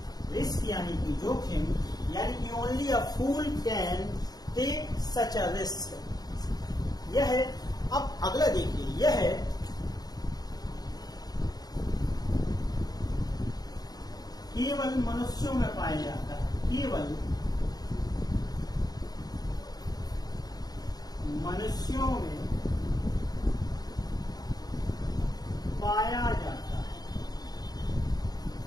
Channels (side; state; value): right; late; 0.19 ms